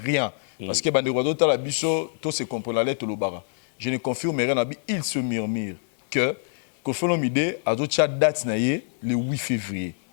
rien parce que bandeko ta la biso to se comprend la lettre lobara. Je ne confirme rien, il se murmure que Kofi Olomide a d'autres date le 8 février.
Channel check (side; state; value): right; silent; 61 dB below the other